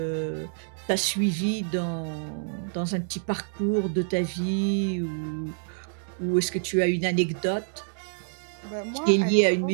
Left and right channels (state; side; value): silent; left; digital silence